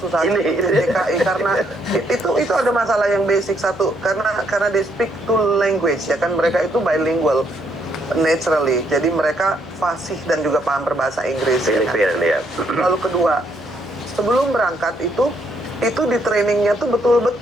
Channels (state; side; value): noise; left; hum, 23 dB below the sound